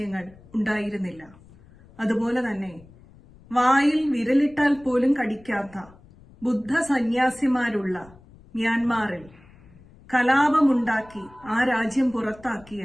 ഉണ്ടായിരുന്നില്ല. അതുപോലെ തന്നെ വായിൽ വിരലിട്ടാൽ പോലും കടിക്കാത്ത ബുദ്ധ സന്യാസിമാരുള്ള മ്യാൻമാറിൽ കലാപമുണ്ടാക്കി ആ രാജ്യം പുറത്താക്കിയ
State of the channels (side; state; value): left; noise; rumble, 25 dB below the sound